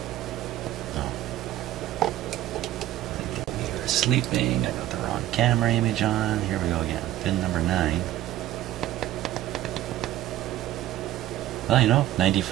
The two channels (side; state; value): left; quieter; 13.9 dB